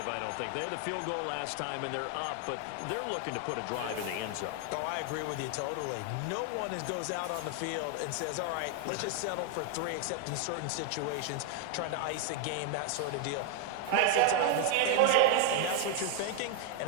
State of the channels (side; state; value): both; different; correlation 0.00